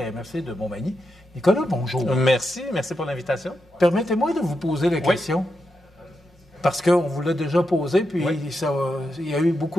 MRC de Montmagny. Nicolas, bonjour. Merci pour l'invitation. Permettez-moi de vous poser la question. Parce qu'on vous l'a déjà posé, puis il y a eu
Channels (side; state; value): both; normal; correlation 0.86